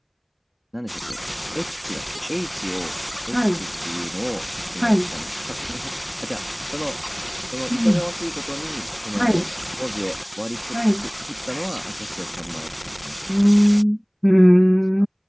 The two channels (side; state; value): both; identical; correlation 1.00